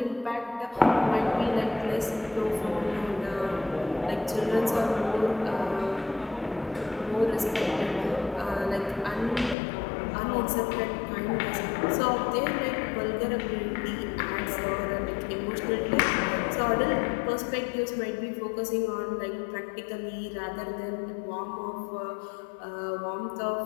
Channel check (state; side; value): drops out; right; at 9.6 s